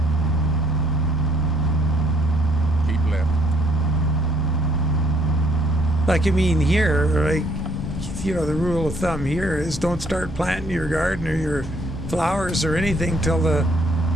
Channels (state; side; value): normal; both; correlation 0.66